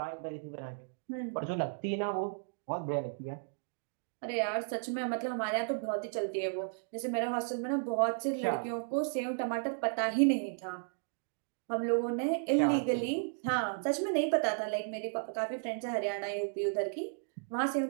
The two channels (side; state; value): left; silent; digital silence